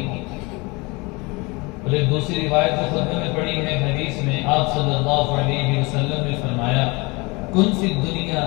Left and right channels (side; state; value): right; quieter; 26.2 dB